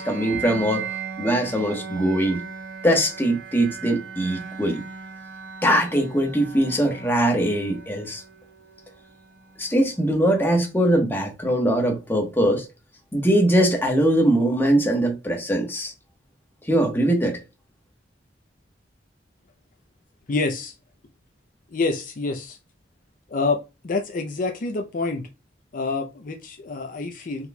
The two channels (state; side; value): normal; both; correlation 0.66